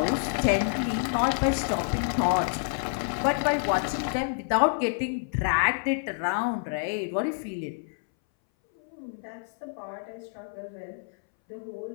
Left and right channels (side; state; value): right; silent; 59 dB below the other